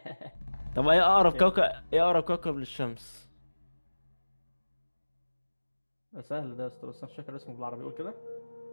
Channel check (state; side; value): inverted; both; correlation -1.00